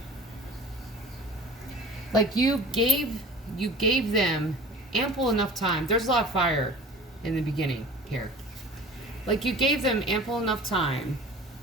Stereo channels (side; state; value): both; normal; correlation 0.40